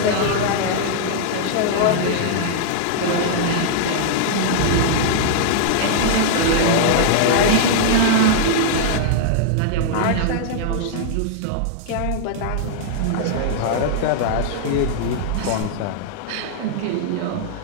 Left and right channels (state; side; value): different; both; correlation -0.01